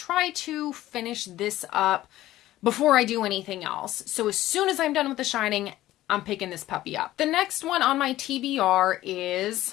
to finish this up before I do anything else. So as soon as I'm done with The Shining, I'm picking this puppy up. The next one on my TBR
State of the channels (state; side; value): quieter; right; 15.1 dB